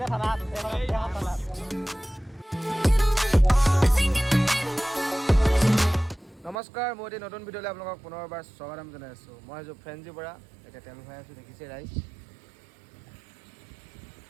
থানাত নমস্কাৰ মই এতিয়া নতুন ভিডিঅ'লৈ আপোনালোকক পুনৰবাৰ স্বাগতম জনাই আছোঁ মই আছোঁ ফ্ৰেঞ্চি পৰা এতিয়া তেল ভৰাই আছোঁ দেখিছে ৰাইজ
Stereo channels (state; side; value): drops out; left; at 6.6 s